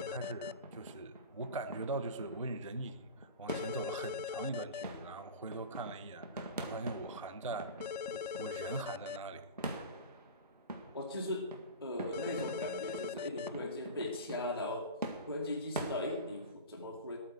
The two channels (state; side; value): inverted; both; correlation -0.31